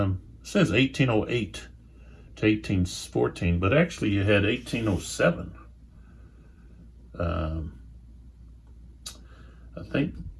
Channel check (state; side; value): identical; both; correlation 1.00